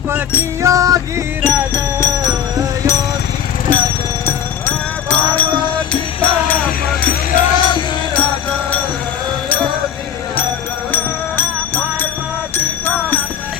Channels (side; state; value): right; quieter; 9.2 dB